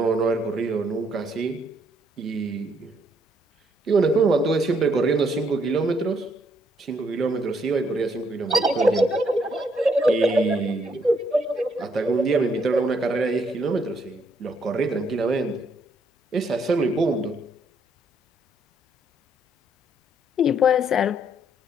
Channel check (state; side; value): normal; both; correlation 0.72